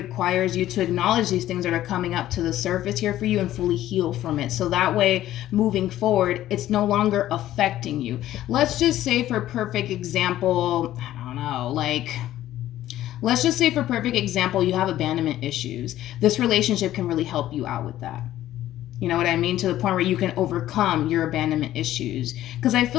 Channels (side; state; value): right; quieter; 13.5 dB